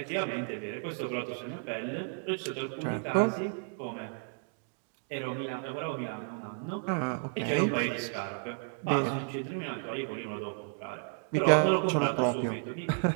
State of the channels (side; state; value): left; silent; 55 dB below the other